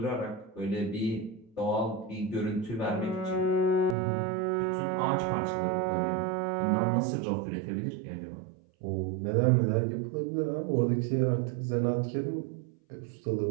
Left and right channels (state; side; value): drops out; left; at 4.0 s